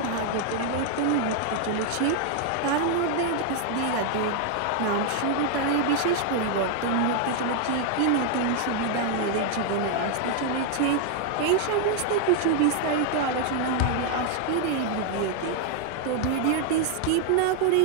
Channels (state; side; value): different; both; correlation 0.00